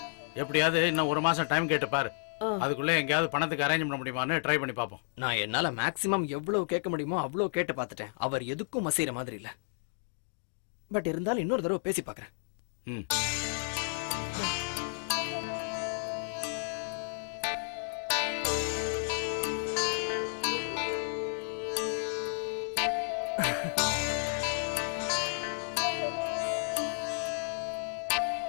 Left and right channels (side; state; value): right; silent; digital silence